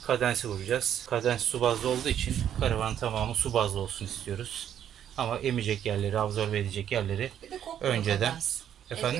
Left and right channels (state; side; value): quieter; left; 9.9 dB